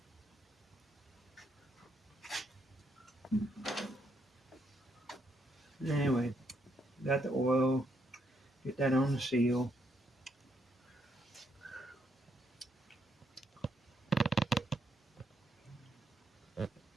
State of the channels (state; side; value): normal; both; correlation 0.76